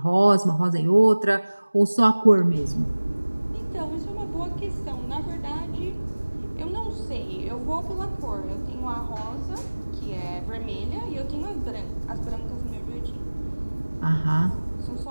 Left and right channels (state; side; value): inverted; both; correlation -1.00